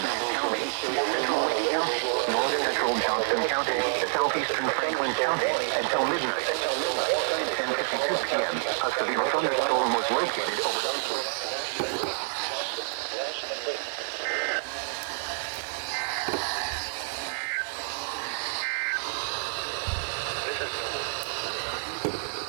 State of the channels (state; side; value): silent; left; 55 dB below the other